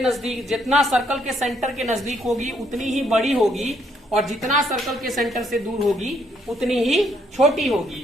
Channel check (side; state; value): both; normal; correlation 0.71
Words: नजदीक, जितना सर्कल के सेंटर के नजदीक होगी उतनी ही बड़ी होगी और जितना सर्कल के सेंटर से दूर होगी उतनी ही छोटी